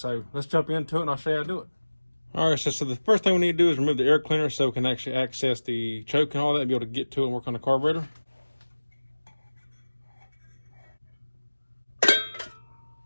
let's jump into it and I'll show you how to do it. Alright, so the first thing we need to do is remove the air cleaner so we can actually access the choke and all that and be able to get to it and work on the carburetor.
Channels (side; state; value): both; inverted; correlation -1.00